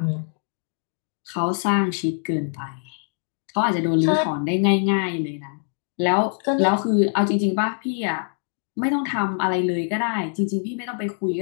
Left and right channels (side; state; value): right; silent; 63 dB below the other